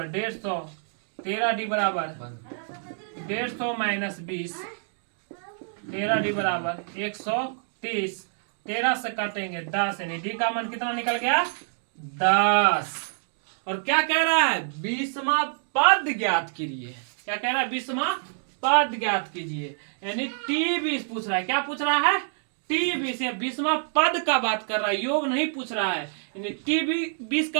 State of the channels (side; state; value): left; silent; digital silence